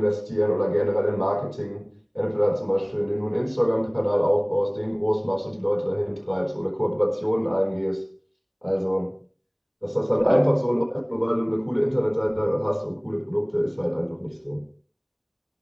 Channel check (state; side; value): identical; both; correlation 1.00